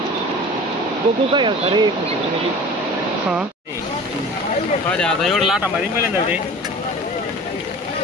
बघू काय अरे हा आता एवढं लाटा मारी मिळेल ना ते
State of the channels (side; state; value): both; normal; correlation 0.40